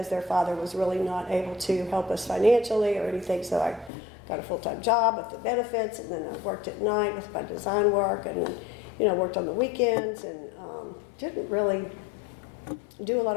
their father was really not able to help us financially or anything. So I got a full-time job with the benefits, and then I worked at night with my design work, and then worked on the weekends, and didn't really do a lot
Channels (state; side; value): drops out; right; at 3.9 s